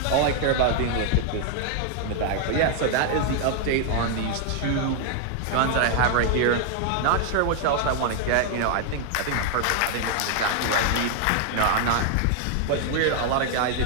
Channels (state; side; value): different; both; correlation 0.00